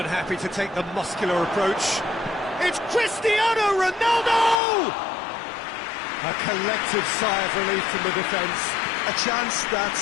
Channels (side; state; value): right; drops out; at 4.6 s